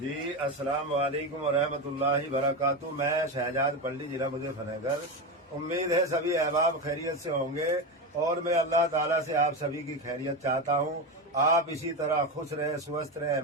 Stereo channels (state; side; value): normal; both; correlation 0.16